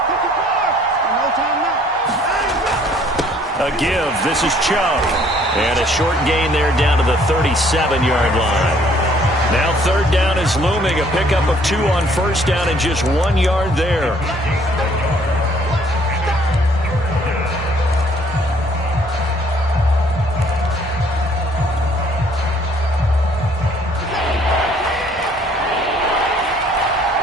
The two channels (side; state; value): both; normal; correlation 0.61